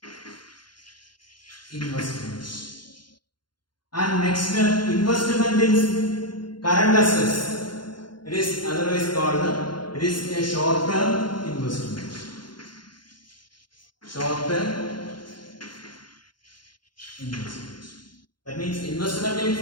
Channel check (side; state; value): right; late; 0.71 ms